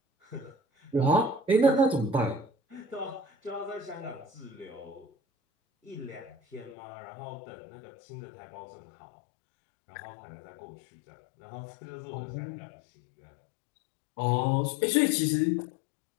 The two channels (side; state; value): right; drops out; at 6.8 s